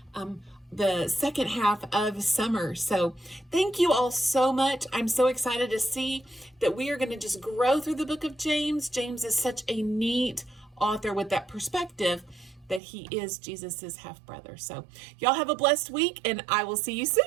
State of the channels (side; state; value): left; drops out; at 12.8 s